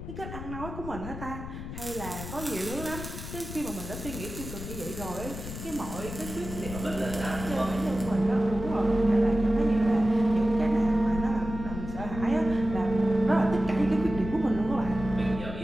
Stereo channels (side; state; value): left; noise; rumble, 9 dB below the sound